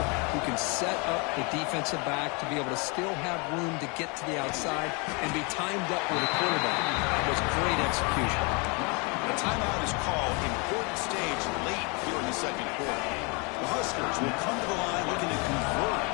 who can set up the defensive back to be able to still have room to get to the outside and be timed up with a quarterback. That was great execution. A timeout is called. Important stage late here in the second quarter. The Huskers will come to the line looking to convert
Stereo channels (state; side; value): quieter; right; 31.1 dB